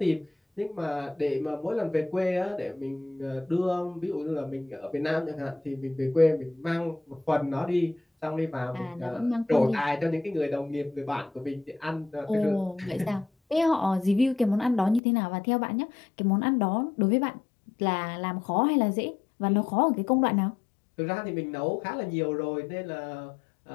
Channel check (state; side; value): drops out; right; at 15.0 s